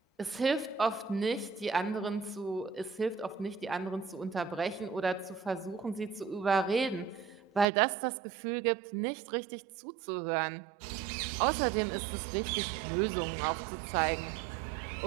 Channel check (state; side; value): drops out; left; at 7.7 s